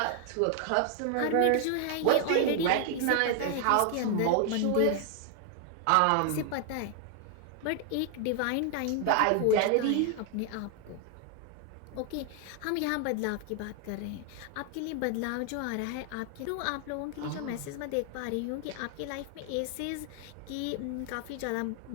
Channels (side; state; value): both; different; correlation 0.00